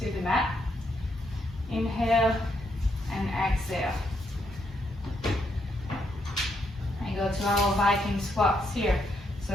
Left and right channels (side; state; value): both; normal; correlation 0.77